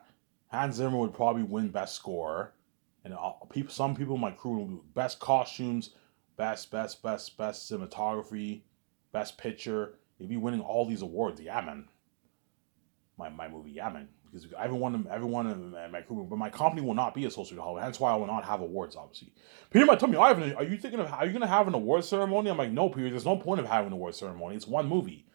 Hans Zimmer would probably win Best Score, and some people in my crew would be Best Costumes, Best Cinematography, Best Picture. They'd be winning all these awards. Yeah, man. My movie, yeah, man. Because everyone in my crew, but my company will not be associated with Hollywood. Hence why I will not have awards. Obviously, Peter might tell me, Ivan, are you going to have an award ceremony? I'm like, no, Peter. There's no point of having an award ceremony. It's one movie.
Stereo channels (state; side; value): silent; left; digital silence